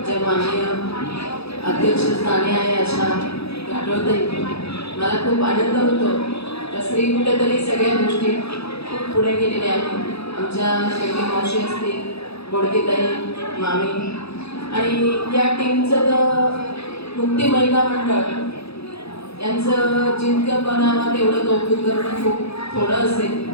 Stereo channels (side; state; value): right; late; 0.78 ms